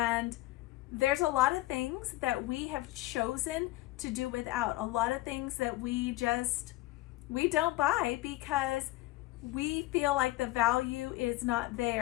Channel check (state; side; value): quieter; right; 18.1 dB